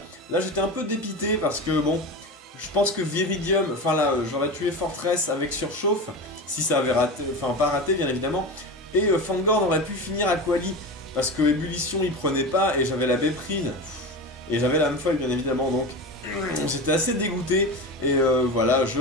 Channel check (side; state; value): both; normal; correlation 0.26